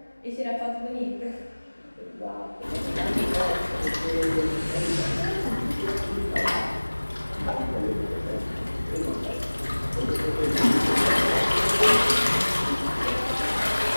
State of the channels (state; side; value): inverted; both; correlation -1.00